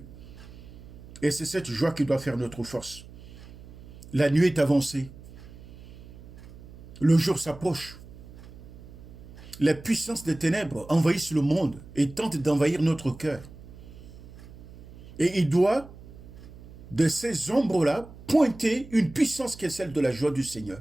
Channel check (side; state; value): right; noise; hum, 17 dB below the sound